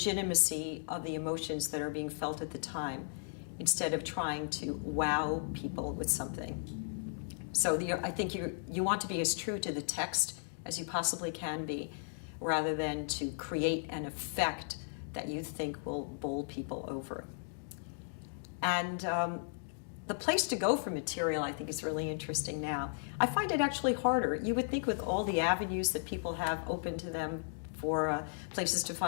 of the emotions that are being felt at the time, instead of trying to wow people with something. So I think you want to be as true to the text as you possibly can be, rather than to create an effect that you think will bowl people over. And the place to go for material, I think, is really interesting now. I find it actually harder. You would think with all the avenues that people have open to them for places to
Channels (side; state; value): right; silent; digital silence